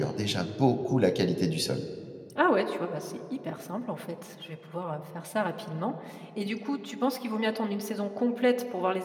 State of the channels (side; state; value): both; identical; correlation 1.00